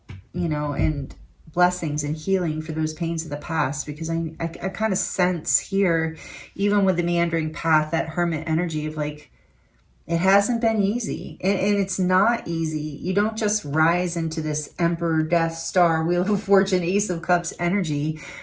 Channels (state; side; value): identical; both; correlation 1.00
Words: and blessings and healing for those pains of the past, because I kind of sense here, even with the meandering path, that hermit energy of like, it hasn't been easy, and it's not easy. You don't just rise into this Emperor, Death, Star, Wheel of Fortune, Ace of Cups energy